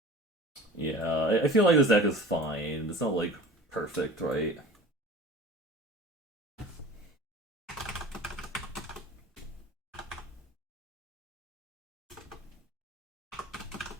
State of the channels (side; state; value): both; normal; correlation 0.40